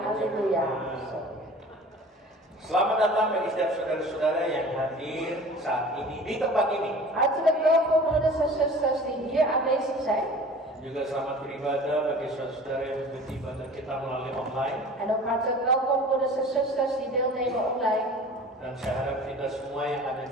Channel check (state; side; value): normal; both; correlation 0.42